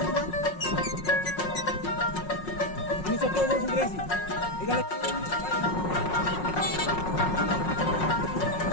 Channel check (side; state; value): right; late; 5.5 ms